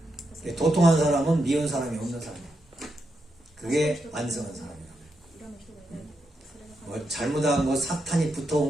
도통한 사람은 미운 사람이 없는 사람이에요. 그게 완성한 사람이에요. 뭐 잘못한 거, 사탄이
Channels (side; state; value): both; normal; correlation 0.84